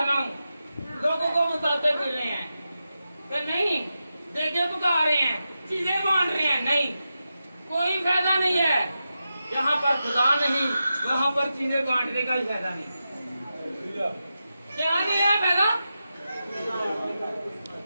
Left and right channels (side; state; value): both; inverted; correlation -0.90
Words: रहा हूँ, लोगों को बताते फिर रहे हैं, तो नहीं, देखे पका रहे हैं, चीजें बांट रहे हैं, नहीं, कोई फायदा नहीं है। यहाँ पर खुदा नहीं, वहाँ पर चीजें बांटने का ही फायदा नहीं। क्या नहीं है फायदा?